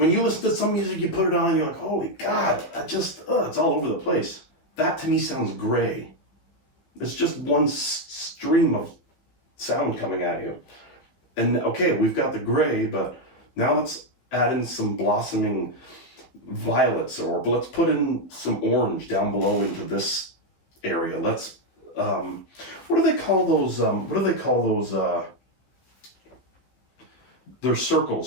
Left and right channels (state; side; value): late; right; 15 ms